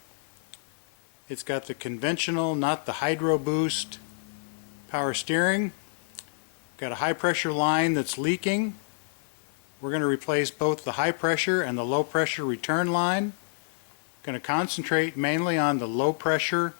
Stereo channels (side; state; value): right; silent; digital silence